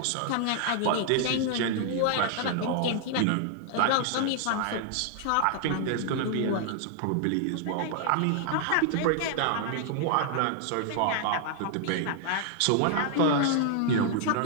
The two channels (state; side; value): different; both; correlation 0.00